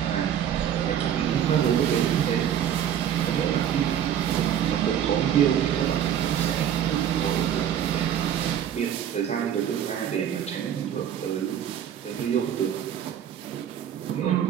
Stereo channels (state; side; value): quieter; left; 9.6 dB